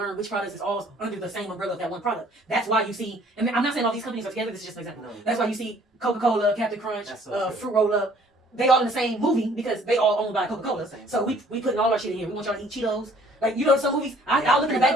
which products is all under the same umbrella of that one product. That's why you see, and I'm not saying all these companies are together. This is just an example. No. That's why you see Coca-Cola, Captain Crunch, So Fruit Roll Up. They all in the same movie because they all owned by Coca-Cola. So we putting all our shit in here. We want y'all to eat Cheetos. Like, you know, some movies, I'll look in the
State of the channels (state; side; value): normal; both; correlation 0.57